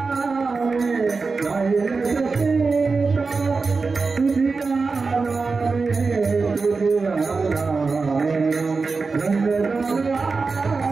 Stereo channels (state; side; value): quieter; left; 4.3 dB